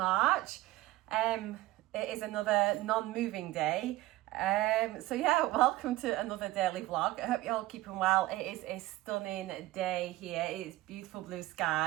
It is another non-moving day. So yeah, welcome to another daily vlog. I hope you're all keeping well. It is a stunning day here. It's beautiful blue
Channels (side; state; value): left; quieter; 17.5 dB